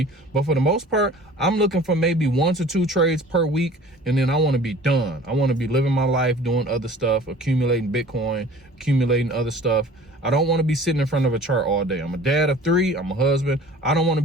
But for the most part, I'm looking for maybe 1 to 2 trades per week, and then I want to be done. I want to be living my life, doing other stuff, accumulating Bitcoin, accumulating other stuff. I don't want to be sitting in front of a chart all day. I'm a dad of 3, I'm a husband. I don't want to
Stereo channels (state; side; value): normal; both; correlation 0.46